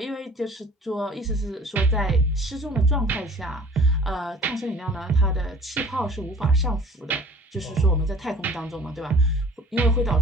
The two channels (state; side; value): normal; both; correlation 0.48